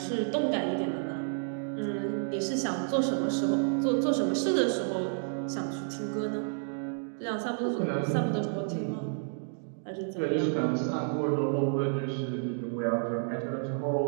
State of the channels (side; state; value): left; silent; digital silence